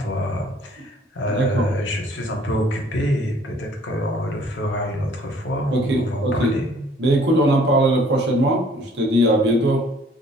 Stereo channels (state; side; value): normal; both; correlation 0.57